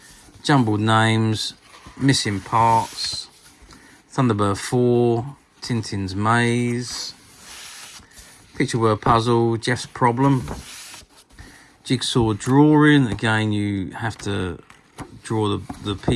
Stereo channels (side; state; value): both; identical; correlation 1.00